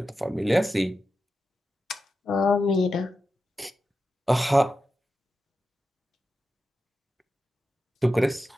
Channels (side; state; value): both; normal; correlation 0.91